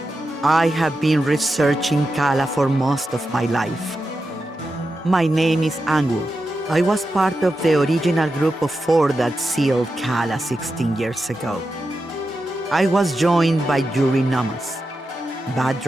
I have been researching Kala for most of my life. My name is Angu. I was part of the original group of 4 that sealed Kala 16 years ago. I was joined by Yuri Namas,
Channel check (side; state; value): both; normal; correlation 0.89